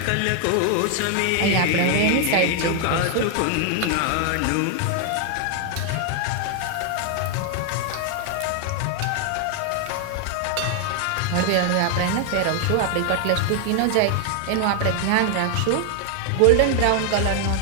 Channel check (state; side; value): different; both; correlation 0.00